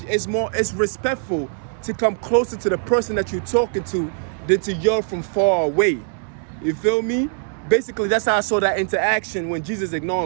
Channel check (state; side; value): silent; left; 64 dB below the other